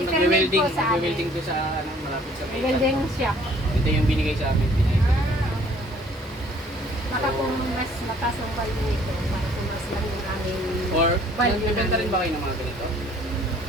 nagwe-welding, po sa amin. nagwe-welding to sa malapit sa may Welding shop. Ito yung binigay sa amin. Pinalit. Baka kung mas mataas ang value nito, para kung mas lang yung aming Or, value nagbibenta rin ba kayo ng mga ganito?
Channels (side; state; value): both; normal; correlation 0.58